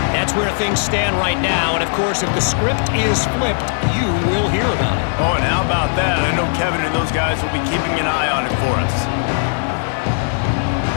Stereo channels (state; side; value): silent; right; 65 dB below the other